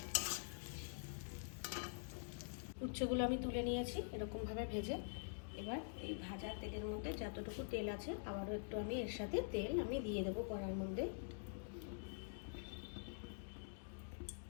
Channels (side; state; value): right; silent; digital silence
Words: উচ্ছেগুলো আমি তুলে নিয়েছি এরকমভাবে ভেজে। এবার এই ভাজা তেলের মধ্যে যতটুকু তেল আছে আবারও একটু আমি এর সাথে তেল আমি দিয়ে দেবো কড়ার মধ্যে।